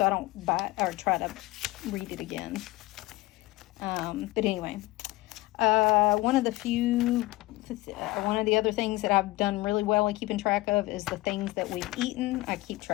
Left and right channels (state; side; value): quieter; right; 19.7 dB